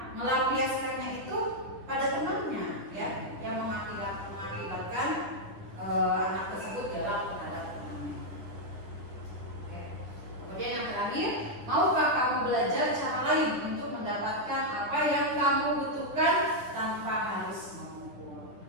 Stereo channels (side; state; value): left; late; 10 ms